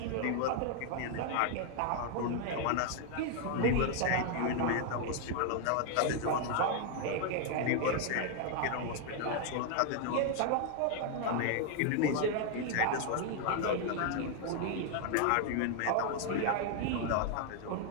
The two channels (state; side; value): different; both; correlation 0.00